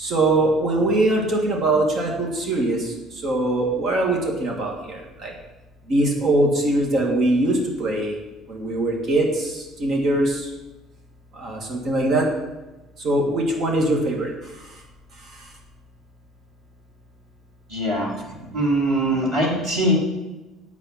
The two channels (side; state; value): both; normal; correlation 0.55